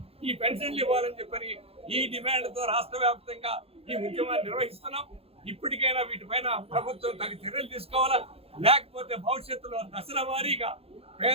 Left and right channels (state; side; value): late; left; 0.28 ms